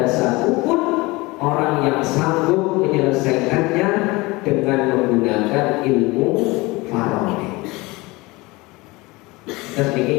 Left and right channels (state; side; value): quieter; right; 22.8 dB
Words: satupun orang yang sanggup menyelesaikannya dengan menggunakan ilmu faraid. Terus ini